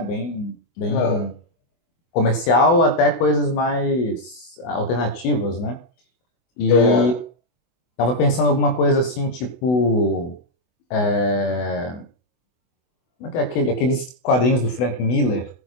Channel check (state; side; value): late; right; 24 ms